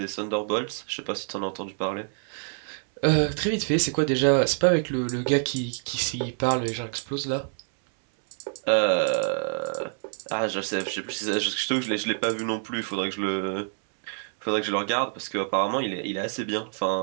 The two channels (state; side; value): silent; left; 56 dB below the other